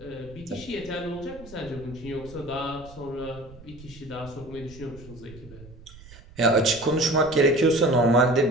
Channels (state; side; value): noise; right; rumble, 19 dB below the sound